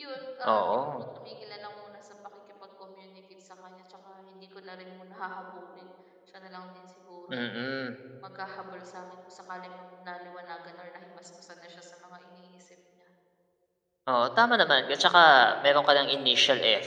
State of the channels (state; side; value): identical; both; correlation 1.00